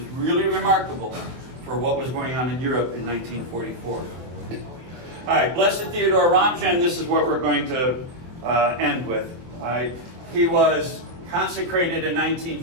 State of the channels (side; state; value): left; late; 23 ms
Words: really remarkable for what was going on in Europe in 1944. All right, Blessed Theodore Ramjan, this is what we're going to end with. All right. He was consecrated in